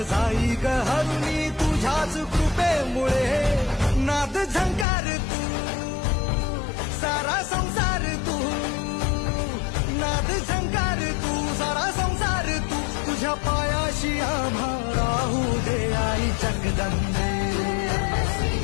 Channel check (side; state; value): right; drops out; at 4.9 s